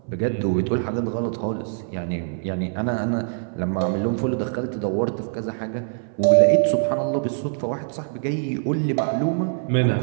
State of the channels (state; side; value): silent; left; 59 dB below the other